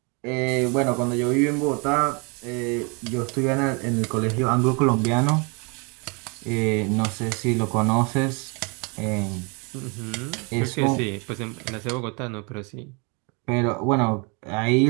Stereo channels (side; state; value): left; quieter; 32.7 dB